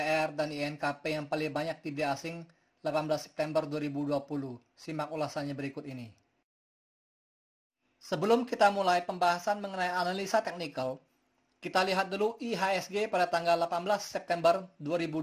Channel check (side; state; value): both; identical; correlation 1.00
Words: dan INKP yang paling banyak di asing 18 September 2020. Simak ulasannya berikut ini. Sebelum kita mulai pembahasan mengenai analisa teknikal, kita lihat dulu IHSG pada tanggal 18 September